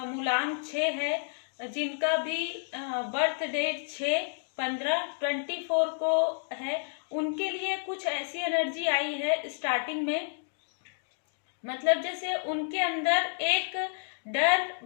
6 है, जिनका भी बर्थ डेट 6, 15, 24 को है, उनके लिए कुछ ऐसी एनर्जी आई है स्टार्टिंग में। मतलब जैसे उनके अंदर एक डर,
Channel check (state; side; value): silent; right; digital silence